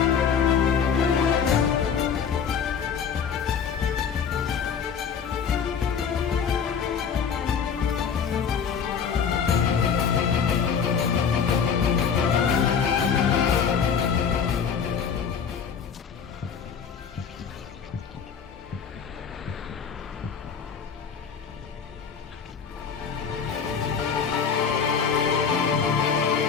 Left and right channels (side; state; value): right; quieter; 6.8 dB